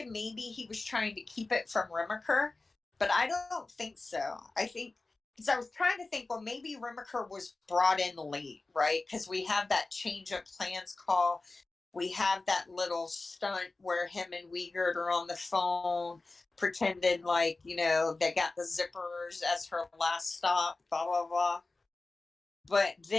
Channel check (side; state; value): right; quieter; 3.4 dB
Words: maybe he was trying to keep it from Remaker, but I don't think so. I think, because I was trying to think, well, maybe Remaker was brought in late, right? Because we have that change of plans call we have that little stunt where him and Wiegert are on the phone, pretending like, you know, they got the zippers as her last stop, blah, blah, blah. But